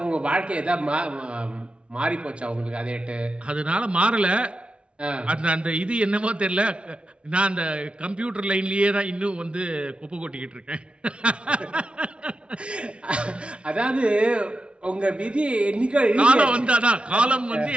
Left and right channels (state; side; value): late; left; 0.059 ms